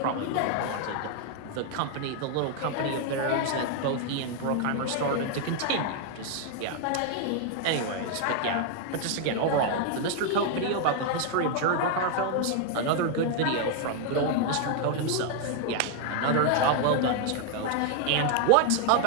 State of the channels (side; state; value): both; different; correlation 0.00